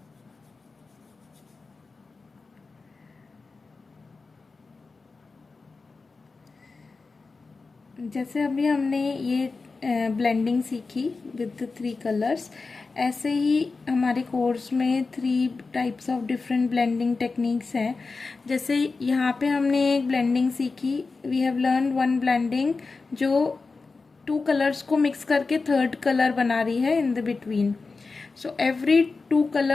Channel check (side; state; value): right; quieter; 4.1 dB